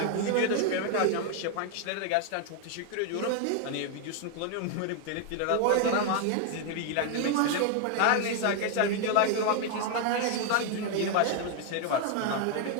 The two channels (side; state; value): both; different; correlation 0.00